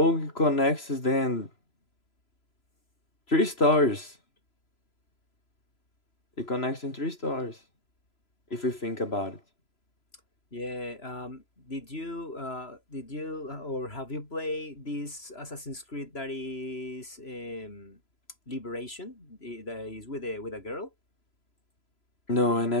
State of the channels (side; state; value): right; late; 3.0 ms